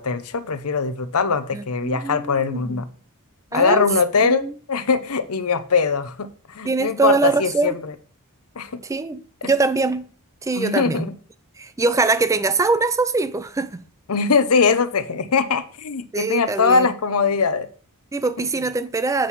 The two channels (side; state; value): both; normal; correlation -0.11